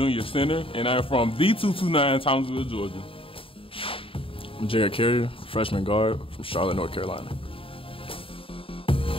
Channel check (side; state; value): right; late; 0.26 ms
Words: center, and I'm from D229, Townsville, Georgia. I'm DERECK Carrier, freshman guard from Charlotte, North Carolina.